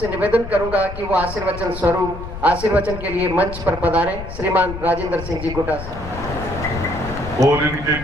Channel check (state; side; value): noise; left; rumble, 10 dB below the sound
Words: निवेदन करूंगा कि वो आशीर्वचन स्वरूप आशीर्वचन के लिए मंच पर पधारें। श्रीमान राजेंद्र सिंह जी गुड्डा साहब। और इनके